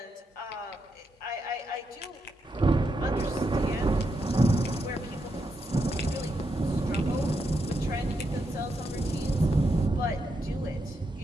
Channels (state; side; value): normal; both; correlation 0.83